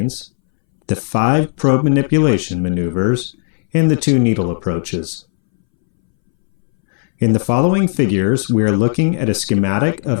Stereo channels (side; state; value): right; silent; 66 dB below the other